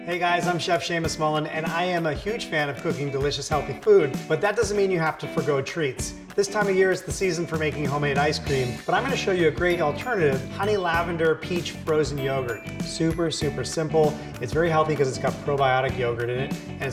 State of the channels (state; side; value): identical; both; correlation 1.00